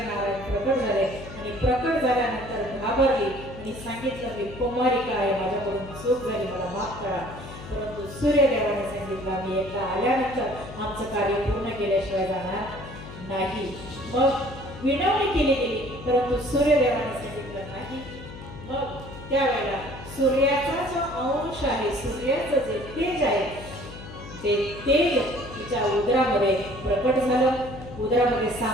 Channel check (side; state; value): left; noise; hum, 14 dB below the sound